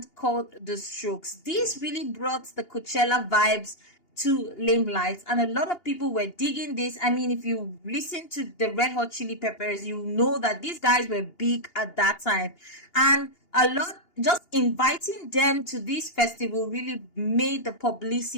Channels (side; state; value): right; late; 2.8 ms